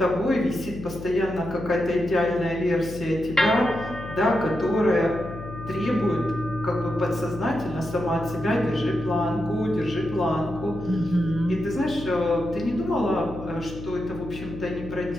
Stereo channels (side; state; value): left; noise; hum, 11 dB below the sound